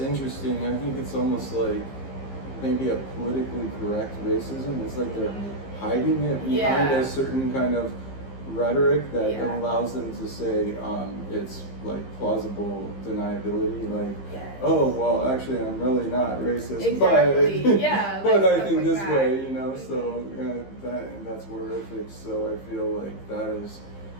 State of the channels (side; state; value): right; late; 15 ms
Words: I think it's almost like maybe a politically correct racism. It's like they're hiding it behind a certain kind of rhetoric that allows them to say it's like plausible deniability, like, oh, well, actually I'm really not racist, exactly. but, but I think this way, you know, so that's horrific. So I feel like that has